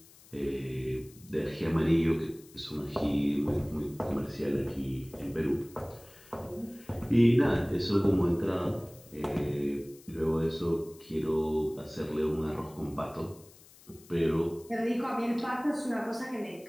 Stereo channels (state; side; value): noise; left; hiss, 24 dB below the sound